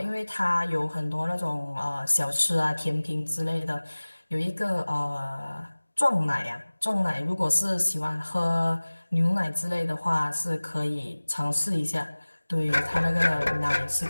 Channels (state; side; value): inverted; both; correlation -1.00